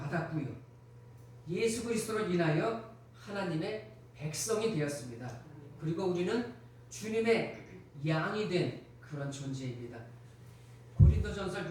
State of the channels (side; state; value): both; identical; correlation 1.00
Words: 예수 그리스도로 인하여 하나님의 백성이 되었습니다. 그리고 우리는 주님의 양이 된 그런 존재입니다. 고린도전서